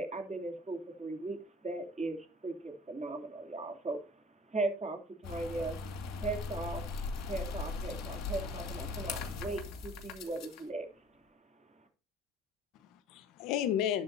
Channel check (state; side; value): normal; both; correlation 0.47